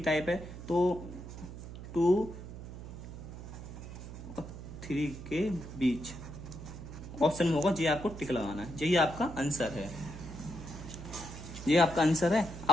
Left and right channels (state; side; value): noise; right; hum, 11 dB below the sound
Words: टाइप है। तो 2 और 3 के बीच ऑप्शन में होगा, ये आपको टिक लगाना है, यही आपका आंसर है, ये आपका आंसर है।